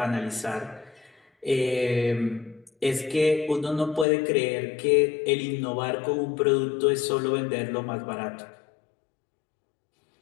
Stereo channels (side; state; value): right; drops out; at 4.0 s